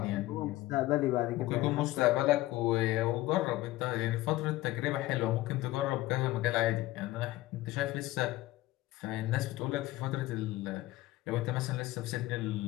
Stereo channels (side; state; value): right; quieter; 17.3 dB